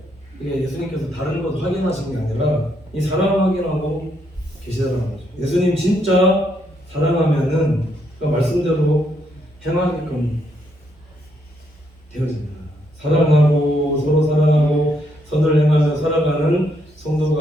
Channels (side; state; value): both; normal; correlation 0.75